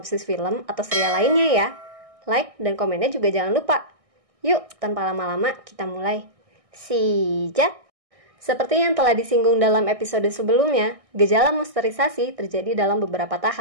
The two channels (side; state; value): left; late; 1.6 ms